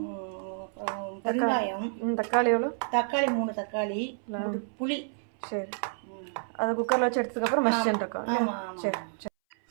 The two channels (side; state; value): left; silent; 58 dB below the other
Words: வெங்காயம். தக்காளி எவ்வளோ? தக்காளி 3 தக்காளி, புளி. சரி. அதை குக்கரில் வச்சு எடுத்ததுக்கப்புறம் மசிச்சுட்டு இருக்கோம். சரி சரி.